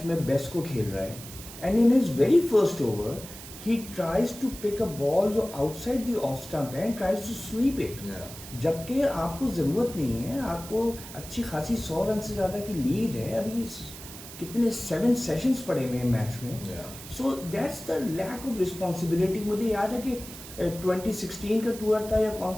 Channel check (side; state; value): right; noise; hiss, 14 dB below the sound